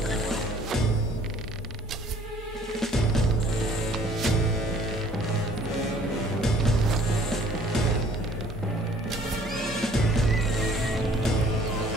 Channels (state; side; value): normal; both; correlation 0.56